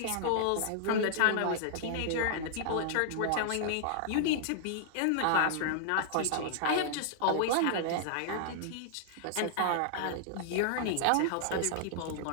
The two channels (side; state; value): both; different; correlation -0.01